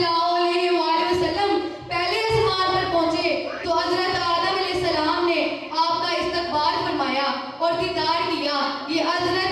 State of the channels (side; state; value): both; identical; correlation 1.00